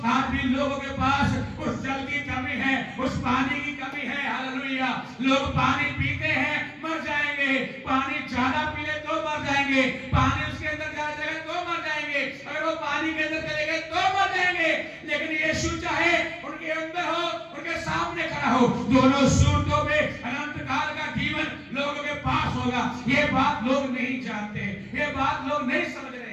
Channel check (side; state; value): both; identical; correlation 1.00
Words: आज भी लोगों के पास उस जल की कमी है, उस पानी की कमी है। हालेलुया। लोग पानी पीते हैं, मर जाएंगे, पानी ज्यादा पी ले तो मर जाएंगे, पानी उसके अंदर जा जाएगा तो मर जाएंगे, अगर वो पानी के अंदर चले गए तो मर जाएंगे। लेकिन यीशु चाहे उनके अंदर हो, उनके सामने खड़ा हो, दोनों सूरतों में अनंत काल का जीवन लोगों के पास होगा। ये बात लोग नहीं जानते, ये बात लोग नहीं समझ